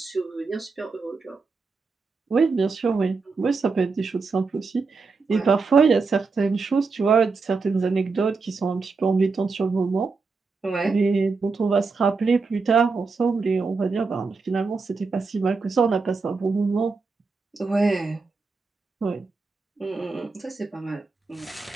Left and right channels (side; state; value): left; quieter; 4.4 dB